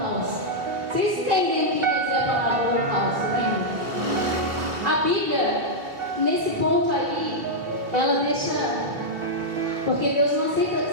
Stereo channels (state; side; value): late; left; 2.9 ms